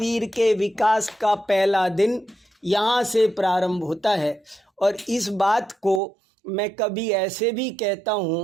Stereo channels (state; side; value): drops out; left; at 6.0 s